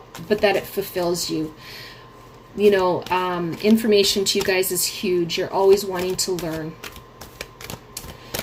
fulfills you. Information to you guys is huge. You're always wanting to learn.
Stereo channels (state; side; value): identical; both; correlation 1.00